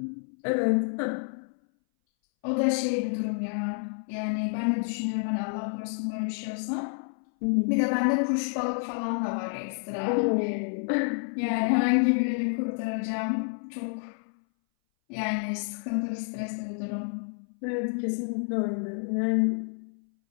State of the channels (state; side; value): silent; right; 59 dB below the other